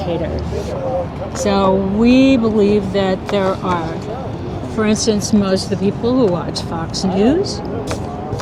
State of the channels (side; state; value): both; identical; correlation 1.00